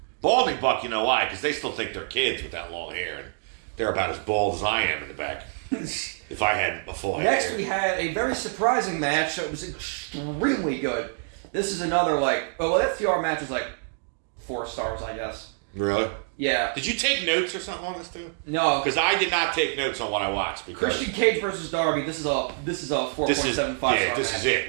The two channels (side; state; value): left; silent; digital silence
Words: Balding Buck, you know why? Because they still think they're kids with that long hair. And they're about as bald as I am in the back. If I had a full Next, hair. we had a very surprising match that was extremely good. This is another, FTR match is 4 stars, I guess. Really? Yeah. Did you take notes or something on this too? No. Because I did not take notes on what I watched. Christian Cage versus Darby. This is a 4.75 star. Yeah, this is